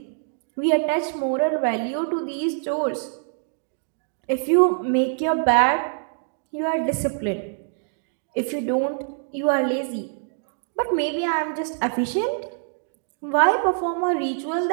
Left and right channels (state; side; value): silent; left; digital silence